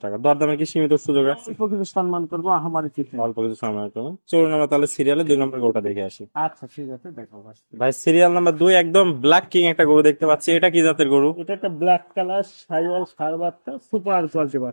টাকা। দরদামে কি সীমিত সুযোগ আছে? অল্প কিছু সম্মান করবো, আমারই কিছু না। অল্প কিছু সময় করুন। চলুন আমরা তাহলে সিরিয়ালে 2 নম্বর গরুটা দেখে আসি। আচ্ছা ঠিক আছে, দেখো ভাই। ভাই সিরিয়াল নাম্বার 2 একদম ব্ল্যাক কিং একটা গরু দেখতে পাচ্ছি। এটা কি জাতের গরু? এটা একটা ব্ল্যাক কালার সাইওয়াল ষাঁড় বাচ্চা, সুপার কোয়ালিটি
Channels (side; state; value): both; inverted; correlation -1.00